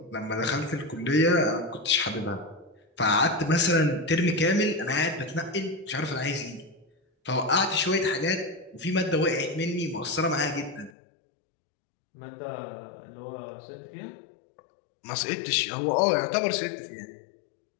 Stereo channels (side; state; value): right; drops out; at 10.9 s